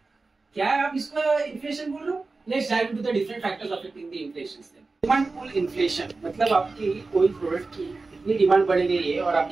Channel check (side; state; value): left; quieter; 3.8 dB